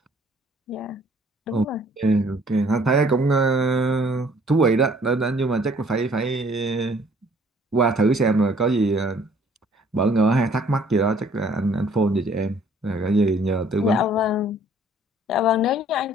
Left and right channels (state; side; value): normal; both; correlation 0.59